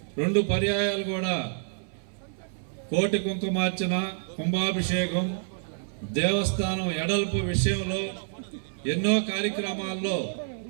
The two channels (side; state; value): left; silent; 59 dB below the other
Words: 2 పర్యాయాలు కూడా కోటి కుంకుమార్చన, కుంభాభిషేకం, దేవస్థానం ఎడల్పు విషయంలో ఎన్నో కార్యక్రమాల్లో